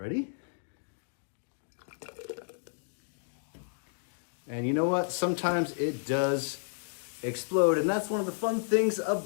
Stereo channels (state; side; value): silent; right; digital silence